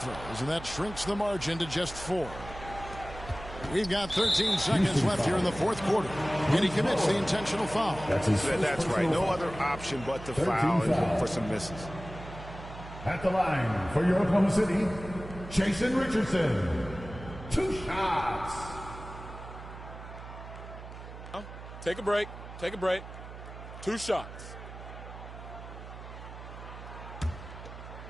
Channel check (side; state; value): right; noise; hum, 13 dB below the sound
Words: and that shrinks the margin to just 4. We've got 13 seconds left here in the fourth quarter, and he commits the intentional foul. That's right. No other option but to foul and look for some misses. At the line for your Oklahoma City, Jason Richardson. 2 shots. Take a break. Take a break. 2 shots.